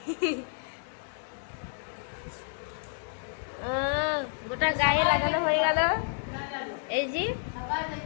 গোটা গায়ে লাগানো হয়ে গেল। এই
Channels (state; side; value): silent; right; digital silence